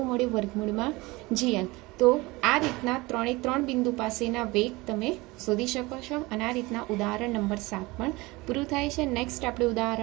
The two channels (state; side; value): quieter; left; 22.4 dB